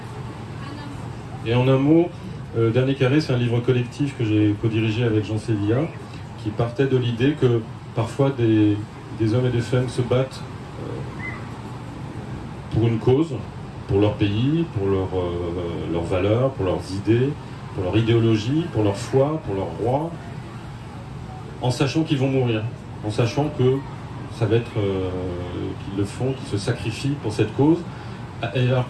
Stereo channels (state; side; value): identical; both; correlation 1.00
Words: Et en un mot, Dernier Carré, c'est un livre collectif que j'ai co-dirigé avec Jean Sévilla, qui partait de l'idée que parfois des hommes et des femmes se battent pour une cause, pour leur pays, pour leurs valeurs, pour leurs idées, pour leur idéologie, pour leur foi, pour leur roi, en sachant qu'ils vont mourir, en sachant que ça va être qu'ils le font, qu'ils se sacrifient pour cette cause, alors